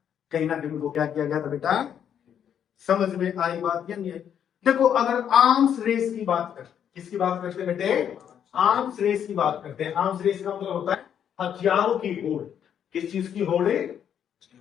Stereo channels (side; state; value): right; quieter; 8.9 dB